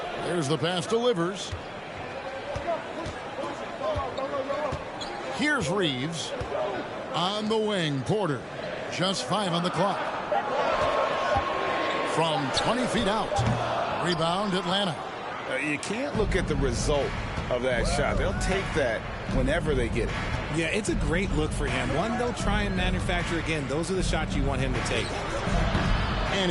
Here's the pass to Livers. Here's Reeves. On the wing, Porter. Just 5 on the clock. From 20 feet out. Rebound, Atlanta. You can't look at the result of that shot. They'll take that whenever they get it. Yeah, it's a great look for him. One they'll try and manufacture again. Those are the shots you want him to take.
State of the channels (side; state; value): both; identical; correlation 1.00